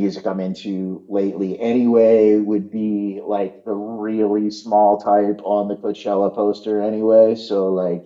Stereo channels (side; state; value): both; identical; correlation 1.00